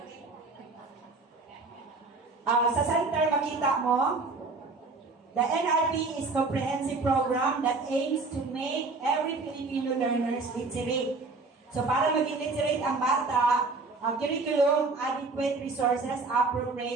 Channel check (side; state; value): left; quieter; 3.8 dB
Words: Sa center, makita mo. The NRP is comprehensive program that aims to make every Filipino learners literate. So, para maging literate ang bata, ang curriculum, adequate resources,